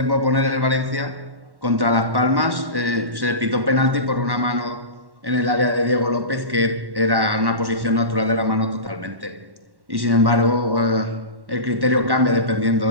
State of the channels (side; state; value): left; late; 1.1 ms